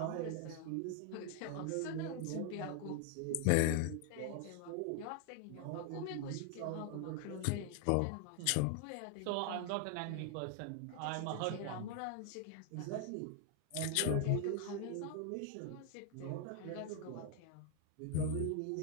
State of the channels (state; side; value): different; both; correlation 0.00